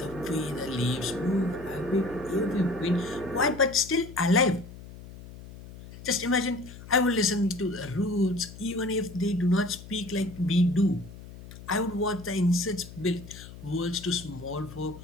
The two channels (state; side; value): noise; left; hum, 16 dB below the sound